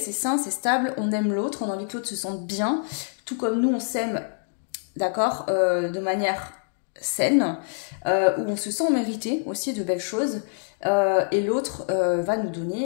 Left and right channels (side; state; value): right; silent; digital silence